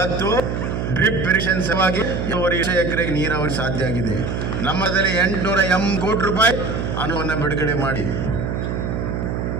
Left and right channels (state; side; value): noise; right; hum, 2 dB below the sound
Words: ಡ್ರಿಪ್ ಇರಿಗೇಷನ್ ಸಲುವಾಗಿ 2 ಎಕರೆಗೆ ನೀರಾವರಿ ಸಾಧ್ಯ ಆಗಿದೆ. ನಮ್ಮದಲ್ಲಿ 880 ಕೋಟಿ ರೂಪಾಯಿ ಹಣವನ್ನು ಬಿಡುಗಡೆ ಮಾಡಿ